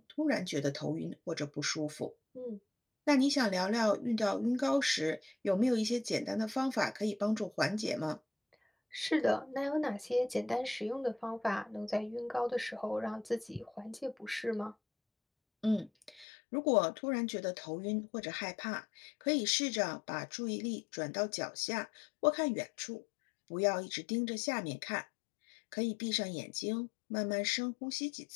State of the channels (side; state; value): right; drops out; at 16.2 s